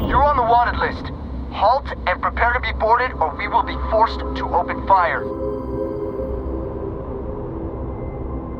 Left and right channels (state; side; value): identical; both; correlation 1.00